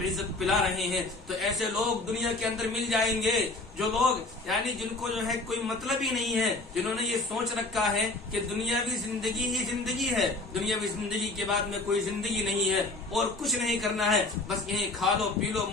پلا رہے ہیں، تو ایسے لوگ دنیا کے اندر مل جائیں گے جو لوگ یعنی جن کو جو ہے کوئی مطلب ہی نہیں ہے، جنہوں نے یہ سوچ رکھا ہے کہ دنیاوی زندگی ہی زندگی ہے، دنیاوی زندگی کے بعد میں کوئی زندگی نہیں ہے اور کچھ نہیں کرنا ہے، بس یہیں کھا لو پی لو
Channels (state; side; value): quieter; right; 3.1 dB